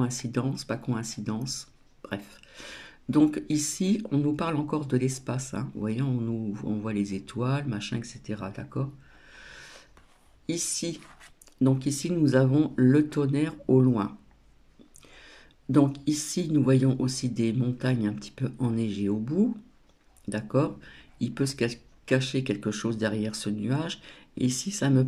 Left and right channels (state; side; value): identical; both; correlation 1.00